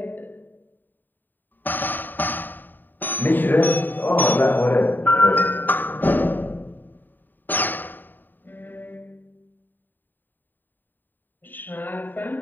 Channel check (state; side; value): late; right; 0.091 ms